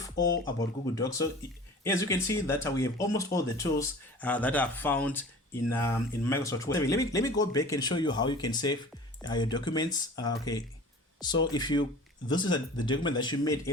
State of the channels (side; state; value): both; normal; correlation 0.41